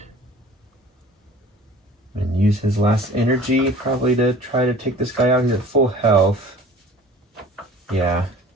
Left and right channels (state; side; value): normal; both; correlation 0.46